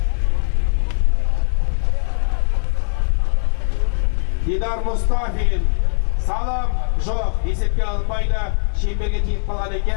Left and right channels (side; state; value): right; silent; digital silence